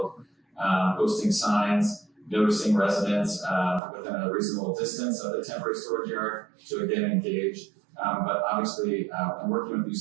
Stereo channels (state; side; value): drops out; left; at 3.8 s